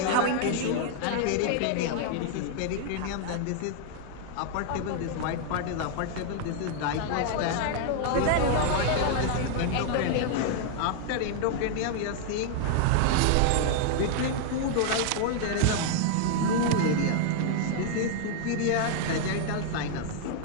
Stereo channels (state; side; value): different; both; correlation 0.00